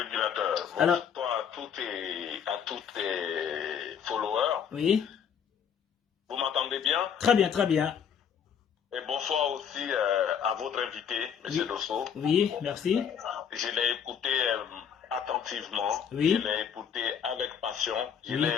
Alors, bonsoir à tous tes followers. Oui. Vous m'entendez bien? Très bien, très bien. Et bonsoir aussi à votre invité, M. Dosso. Oui, merci. Je l'ai écouté attentivement. Oui. Je l'ai écouté avec passion. Je l'ai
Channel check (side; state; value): right; quieter; 7.8 dB